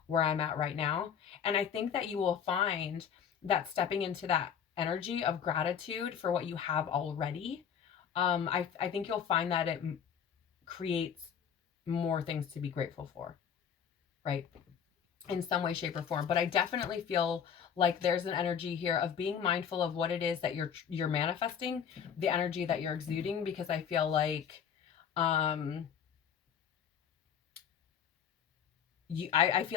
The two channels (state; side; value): quieter; right; 7.9 dB